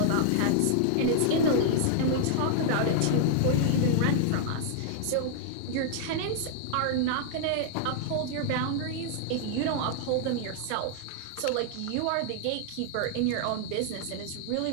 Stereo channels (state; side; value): different; both; correlation -0.01